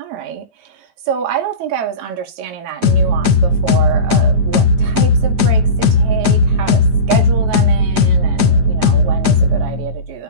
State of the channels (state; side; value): late; left; 8.9 ms